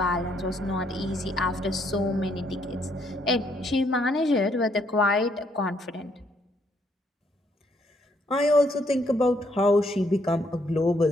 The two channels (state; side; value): normal; both; correlation 0.71